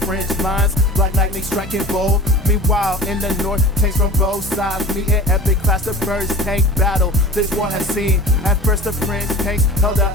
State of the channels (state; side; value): normal; both; correlation 0.38